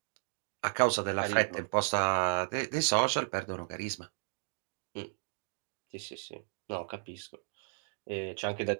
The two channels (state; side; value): silent; left; digital silence